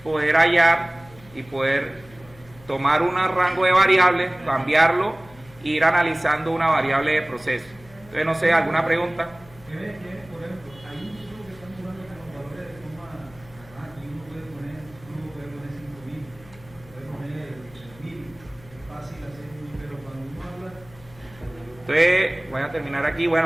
poder hallar y poder tomar un rango de variables, cambiarlo e ir analizando una variable de proceso. Entonces, no sé, ¿alguna pregunta? Por ejemplo, hay un flujo que estamos usando con valores de forma, aquí uno puede poner 5.000, puede poner 3.000, es fácil hacer, pero cuando uno habla... Entonces, voy a terminar aquí.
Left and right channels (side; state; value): left; noise; hum, 23 dB below the sound